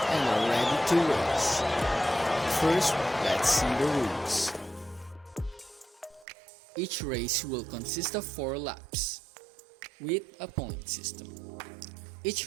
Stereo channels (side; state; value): left; drops out; at 6.2 s